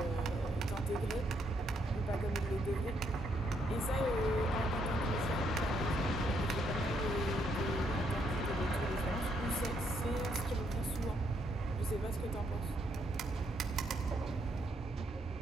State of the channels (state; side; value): normal; both; correlation 0.74